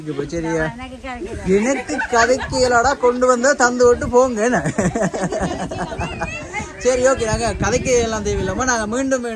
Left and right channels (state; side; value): identical; both; correlation 1.00